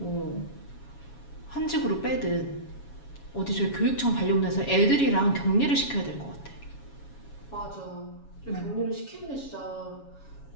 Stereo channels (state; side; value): late; right; 7.2 ms